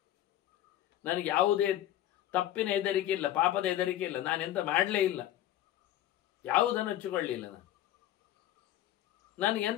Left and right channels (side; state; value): right; quieter; 12.8 dB